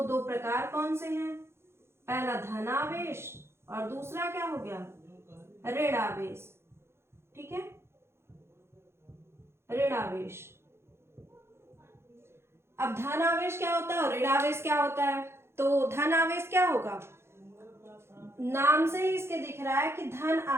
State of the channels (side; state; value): left; late; 0.12 ms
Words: 2 प्रकार कौन से हैं, पहला धन आवेश और दूसरा क्या हो गया, ऋण आवेश, ठीक है, ऋण आवेश। अब धन आवेश क्या होता है और ऋण आवेश क्या होता है, तो धन आवेश क्या होगा, नाम से ही इसके दिख रहा है कि धन